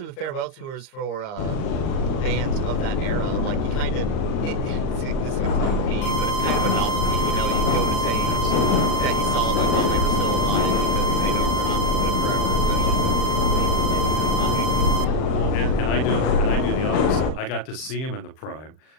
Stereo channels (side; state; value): right; late; 38 ms